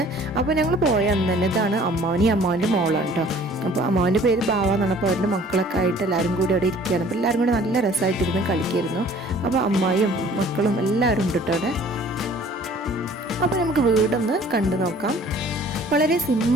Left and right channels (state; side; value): normal; both; correlation 0.52